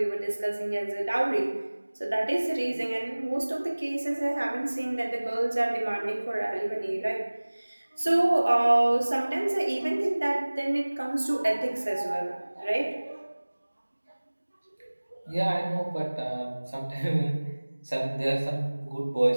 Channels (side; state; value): both; inverted; correlation -1.00